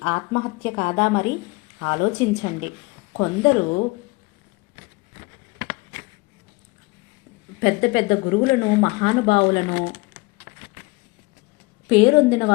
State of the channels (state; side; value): quieter; right; 24.6 dB